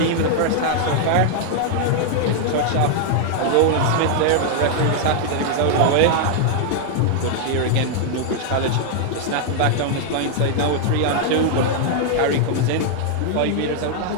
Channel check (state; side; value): different; both; correlation -0.01